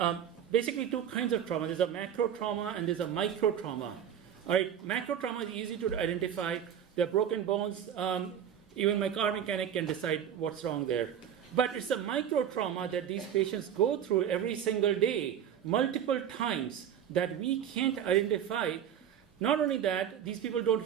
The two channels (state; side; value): quieter; left; 9.2 dB